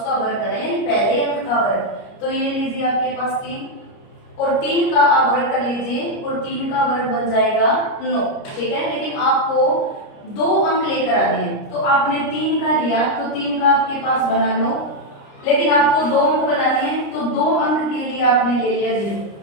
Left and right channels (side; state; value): right; late; 29 ms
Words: वर्ग करना है, यानी पहले अंक का वर्ग। तो ये लीजिए आपके पास 3 और 3 का आप वर्ग कर लीजिए और 3 का वर्ग बन जाएगा 9। ठीक है, लेकिन आपको 2 अंक लेकर आने हैं, तो आपने 3 का लिया तो 3 का आपके पास बना 9, लेकिन आपको 2 अंक बनाने हैं तो 2 अंक के लिए आपने ले लिया 0।